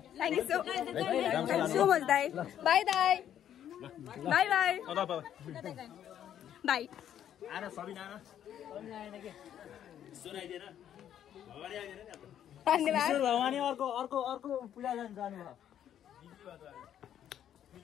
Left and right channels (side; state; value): right; quieter; 10.3 dB